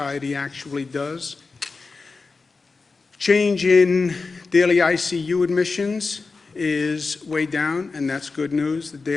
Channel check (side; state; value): right; quieter; 4.2 dB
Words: actually does. Change in daily ICU admissions is way down, and that's good news. The